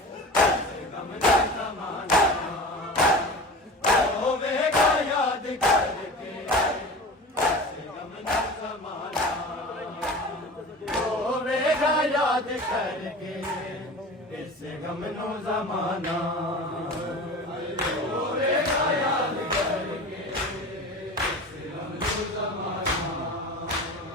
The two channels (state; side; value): normal; both; correlation 0.34